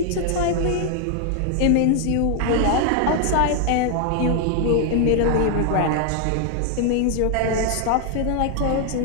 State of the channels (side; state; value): both; different; correlation 0.00